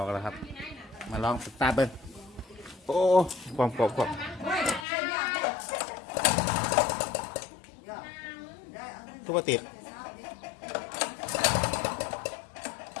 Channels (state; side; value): drops out; right; at 4.9 s